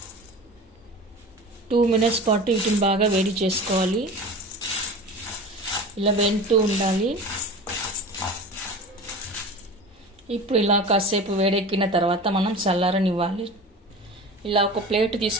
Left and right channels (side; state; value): both; normal; correlation 0.34